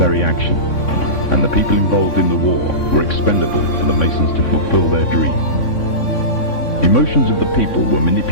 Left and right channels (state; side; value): late; right; 3.6 ms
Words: action, and the people involved in the war were expendable for the Masons to fulfill their dream. Emotions of the people were